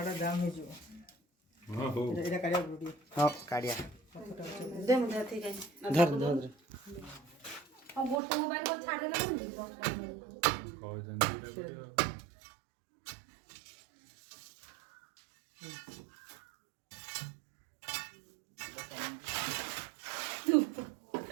जाम हे जो हां हो एटा काढिया वीडियो हां काढ़िया दे मुझे ठीक है धर और गोटे मोबाइल को छाड़ देला कह जन एटा करियो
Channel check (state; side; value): drops out; left; at 8.2 s